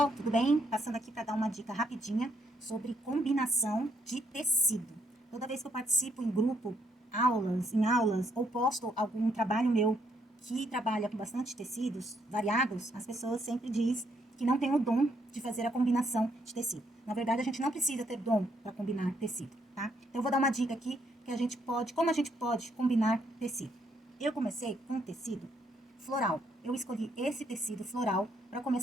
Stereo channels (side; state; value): both; normal; correlation 0.73